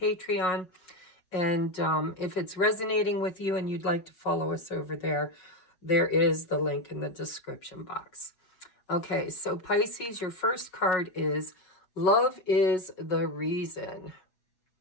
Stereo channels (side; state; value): right; late; 5.5 ms